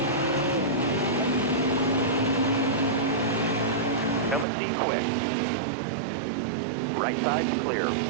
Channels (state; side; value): drops out; left; at 4.5 s